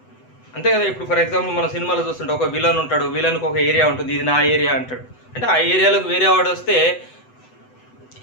అంతే కదా. ఇప్పుడు ఫర్ ఎగ్జాంపుల్ మన సినిమాలో చూస్తుంటే ఒక విలన్ ఉంటాడు, విలన్కి ఒక ఏరియా ఉంటుంది, ఇది నా ఏరియా అంటాడు. అంటే ఆ ఏరియాలోకి వేరే వాడు వస్తే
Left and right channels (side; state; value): right; late; 8.0 ms